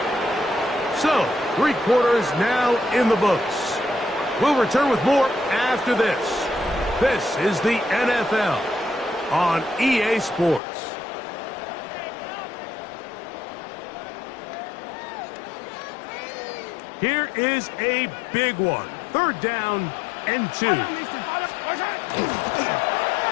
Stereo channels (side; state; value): right; drops out; at 10.6 s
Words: So, 3 quarters now in the books. We'll return with more after this. This is the NFL on EA Sports. Here is a big one. 3rd down and 2. They're